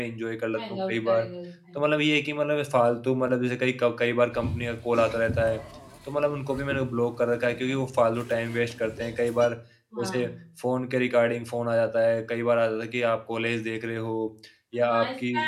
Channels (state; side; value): identical; both; correlation 1.00